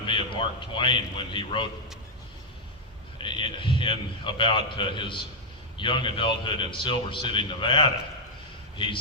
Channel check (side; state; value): both; normal; correlation -0.01